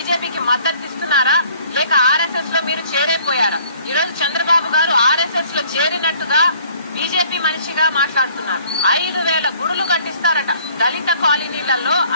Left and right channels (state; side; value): inverted; both; correlation -0.57